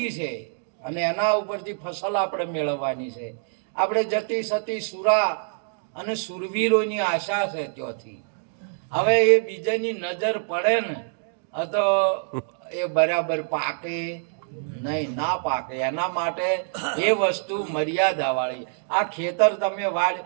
છે અને એના ઉપરથી ફસલ આપણે મેળવવાની છે. આપણે જતી સતી સુરા અને સુરવીરોની આશા છે ત્યાંથી. હવે એ બીજાની નજર પડે ને તો એ બરાબર પાકે નહીં, ના પાકે. એના માટે એ વસ્તુ મર્યાદા વાળી. આ ખેતર તમે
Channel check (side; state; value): left; silent; digital silence